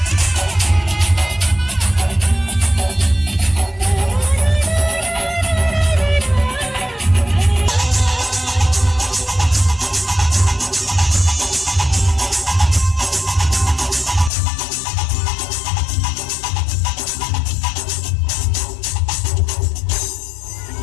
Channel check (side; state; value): right; drops out; at 14.3 s